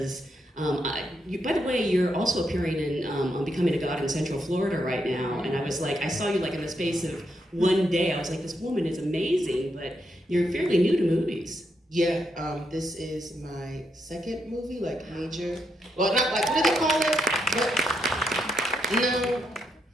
By the way, you're also appearing in on Becoming a God in Central Florida right now, and I was like, I saw you like in the space of one day. I was like, this woman is amazing, but you're fairly new to movies. Yeah, this is my second movie, like major. Well, not like, what do they call it? But, no.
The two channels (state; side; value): normal; both; correlation 0.80